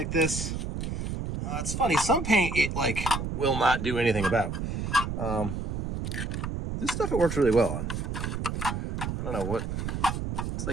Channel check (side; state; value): right; noise; rumble, 3 dB below the sound